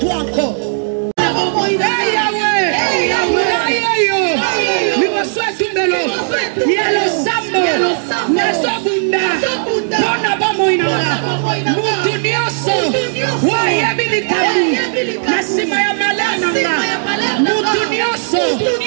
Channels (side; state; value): left; silent; digital silence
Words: encore. Yelo sambo naso bunda bona bamoina mutu nyoso waya bilikamu nasima ya malana mutu nyoso